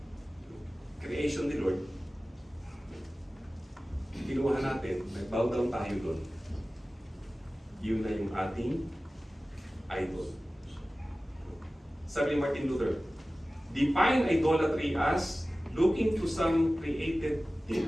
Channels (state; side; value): normal; both; correlation 0.96